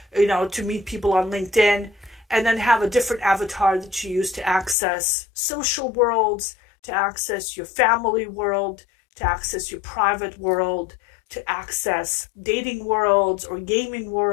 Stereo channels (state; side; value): drops out; right; at 4.8 s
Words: to meet people on LinkedIn, and then have a different avatar that you use to access social worlds, to access your family world, to access your private world, to access dating worlds or gaming